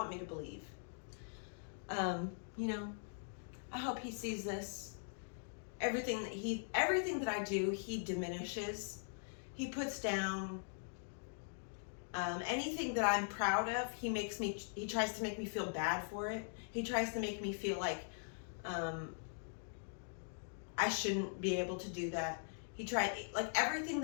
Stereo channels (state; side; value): silent; right; digital silence